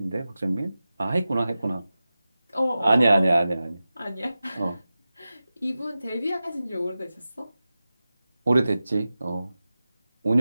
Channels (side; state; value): both; inverted; correlation -0.95